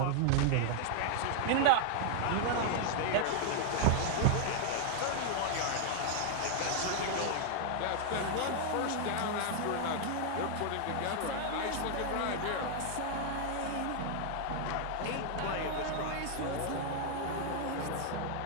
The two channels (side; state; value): both; different; correlation 0.00